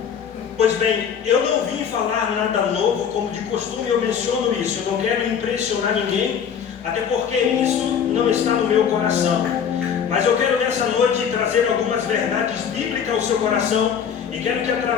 Pois bem, eu não vim falar nada novo, como de costume eu menciono isso. Eu não quero impressionar ninguém, até porque isso não está no meu coração. Mas eu quero nessa noite trazer algumas verdades bíblicas ao seu coração, e quero que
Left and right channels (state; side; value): quieter; right; 7.6 dB